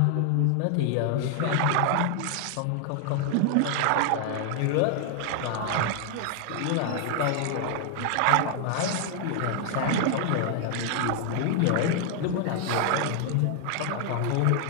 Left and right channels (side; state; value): both; different; correlation 0.00